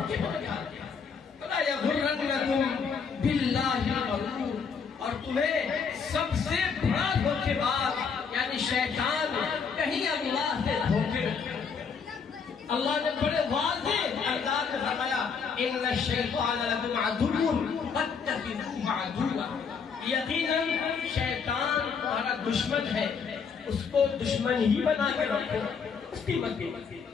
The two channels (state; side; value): quieter; right; 5.9 dB